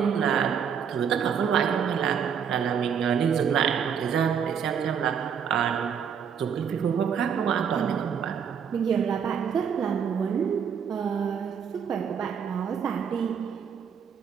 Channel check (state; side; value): quieter; left; 7.4 dB